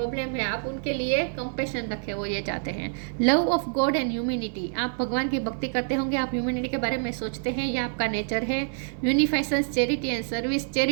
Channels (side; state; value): left; silent; digital silence